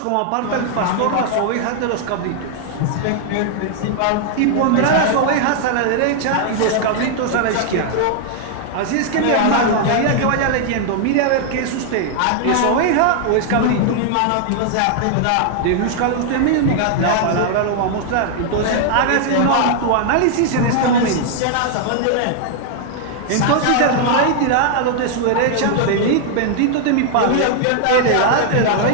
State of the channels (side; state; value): both; different; correlation 0.00